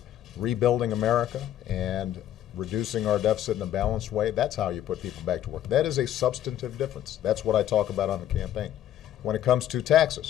rebuilding America and reducing our deficit in a balanced way, that's how you put people back to work. That is a substantive difference. That's what I talk about on the campaign. when it comes to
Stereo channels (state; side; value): quieter; right; 11.6 dB